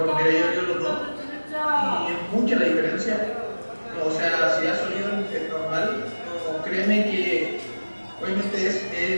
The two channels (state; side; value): inverted; both; correlation -1.00